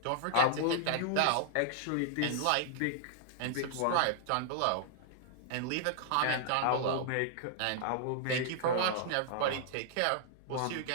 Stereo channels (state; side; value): different; both; correlation -0.01